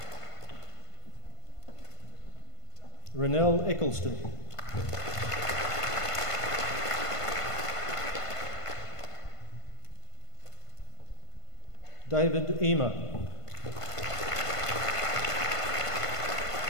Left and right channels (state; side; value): late; right; 1.5 ms